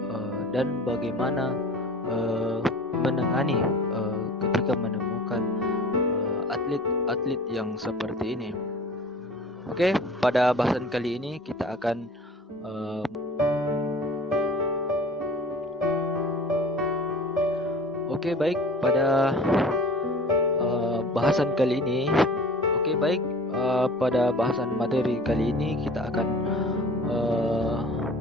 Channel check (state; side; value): normal; both; correlation 0.43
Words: dan bagaimana menangani ketika menemukan atlet-atlet yang seperti ini. Oke, pada bahasan kali ini kita akan pada bahasan kali ini. Pada bahasan materi kali ini kita akan